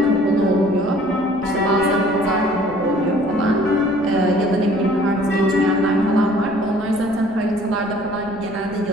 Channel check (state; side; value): noise; left; rumble, 21 dB below the sound